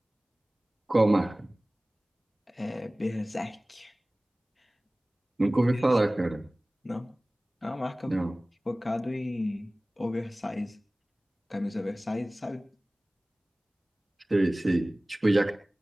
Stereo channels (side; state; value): both; normal; correlation 0.98